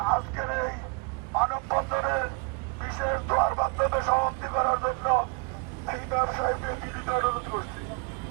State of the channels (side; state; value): left; quieter; 33.6 dB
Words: আজকের এই মানববন্ধনের বিশেষ দোয়ার মাধ্যমে সমাপ্তি করার জন্য এই ব্যবসায়ীদের বিনীত অনুরোধ করছি।